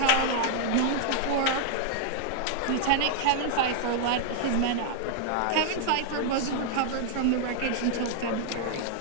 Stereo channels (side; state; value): both; different; correlation 0.00